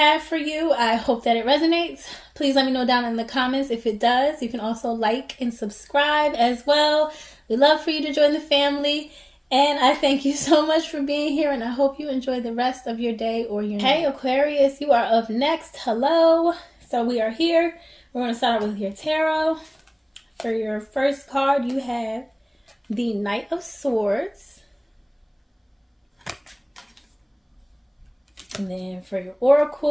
for you. I hope that it resonates. Please let me know down in the comments if it does. You can also like and subscribe as well. We'd love for you to join the family. And I thank you so much for being here, and I hope you enjoy the rest of your day or your night. Hey Aquarius, you are up next. Hello. So we are here. We're going to start with your tarot. For your first card, you have the Knight of Swords. And then for your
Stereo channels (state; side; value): identical; both; correlation 1.00